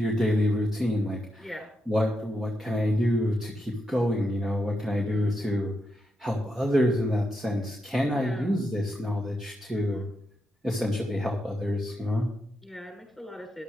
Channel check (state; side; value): normal; both; correlation 0.84